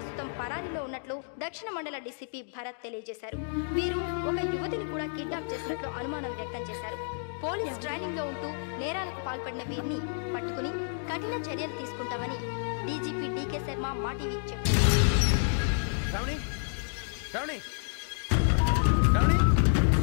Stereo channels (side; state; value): right; silent; digital silence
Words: పరారీలో ఉన్నట్లు దక్షిణ మండల డీసీపీ భరత్ తెలియజేశారు. వీరు ఒక యువతిని కూడా కిడ్నాప్ చేసినట్లు అనుమానం వ్యక్తం చేశారు. పోలీస్ ట్రైనింగ్ లో ఉంటూ నేరాలకు పాల్పడిన వీరిని పట్టుకుని కఠిన చర్యలు తీసుకుంటామని డీజీపీ డీకే శర్మ మా టీవీకి చెప్పారు.